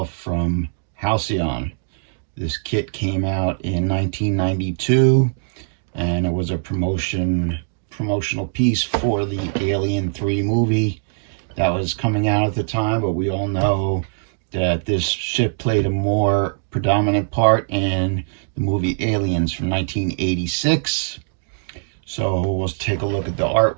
from Halcyon. This kit came out in 1992, and it was a promotional piece for the Alien 3 movie that was coming out at the time, but we all know that this ship played a more predominant part in the movie Aliens from 1986. So we'll take a look at the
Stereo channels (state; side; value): silent; left; digital silence